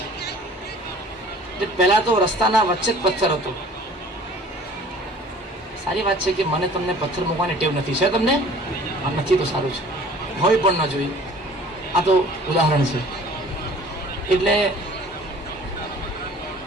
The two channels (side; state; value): both; normal; correlation 0.49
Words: એટલે પહેલા તો રસ્તાના વચ્ચે જ પથ્થર હતો. સારી વાત છે કે મને તમને પથ્થર મૂકવાની ટેવ નથી. છે તમને? નથી તો સારું છે, હોય પણ ન જોઈએ. આ તો ઉદાહરણ છે. એટલે